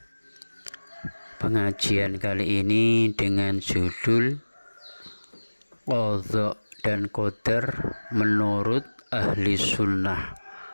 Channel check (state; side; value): inverted; both; correlation -1.00